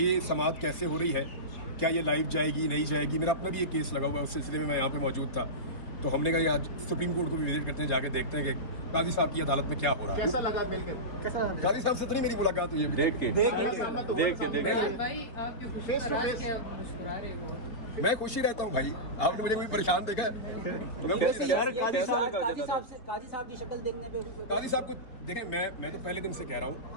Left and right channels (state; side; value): late; right; 4.0 ms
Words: ये समाअत कैसे हो रही है, क्या ये लाइव जाएगी नहीं जाएगी। मेरा अपना भी एक केस लगा हुआ है, उस सिलसिले में मैं यहाँ पे मौजूद था। तो हमने कहा आज सुप्रीम कोर्ट को भी विजिट करते हैं, जाके देखते हैं कि काजी साहब की अदालत में क्या हो रहा है। कैसा लगा मिलकर? कैसा काजी साहब से तो नहीं मेरी मुलाकात हुई है देख के फेस टू फेस? मैं खुश ही रहता हूँ भाई, आपने मुझे कोई परेशान देखा है? मैं खुशी काजी साहब की शक्ल देखने पे काजी साहब को देखें, मैं तो पहले दिन से कह रहा